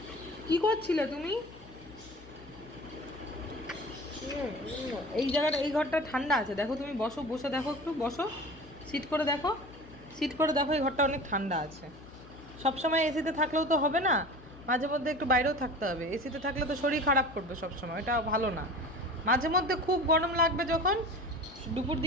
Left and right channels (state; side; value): noise; left; hum, 20 dB below the sound